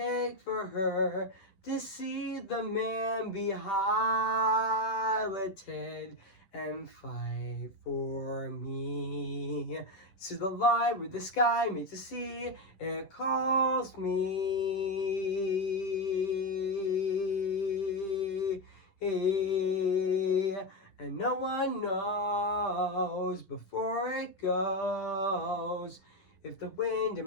for her to see the man be highlighted and fight for me. To the light where the sky meets the sea, it calls me. And no one knows before it goes if the wind in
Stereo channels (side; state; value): right; late; 10 ms